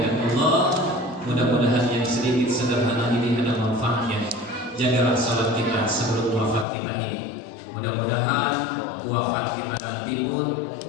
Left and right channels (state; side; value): drops out; right; at 6.7 s